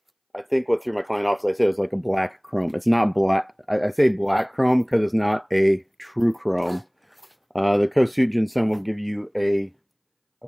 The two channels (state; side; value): identical; both; correlation 1.00